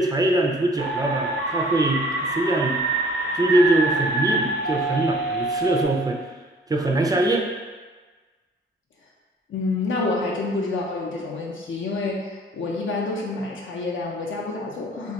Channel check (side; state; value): both; normal; correlation 0.54